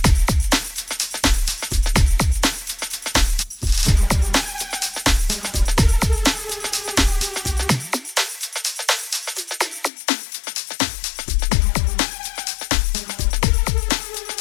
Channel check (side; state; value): right; drops out; at 9.9 s